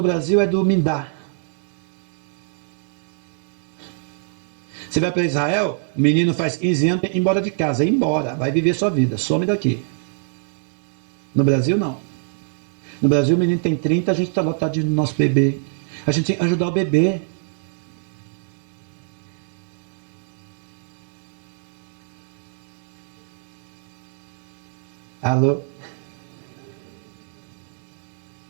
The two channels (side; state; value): left; silent; 63 dB below the other